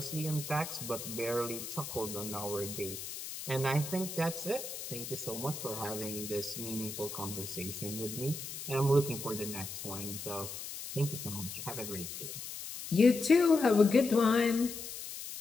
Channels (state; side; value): noise; left; hiss, 8 dB below the sound